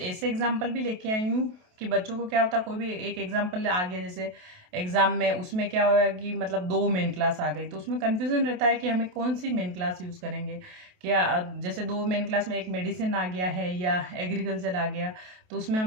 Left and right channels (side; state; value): left; late; 28 ms